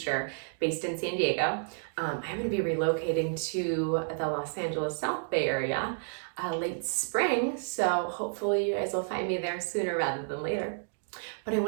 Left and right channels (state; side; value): silent; left; digital silence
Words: based in San Diego. I'm going to be relocating to the Los Angeles South Bay area late spring, so hopefully you guys will find me there sooner rather than later. But I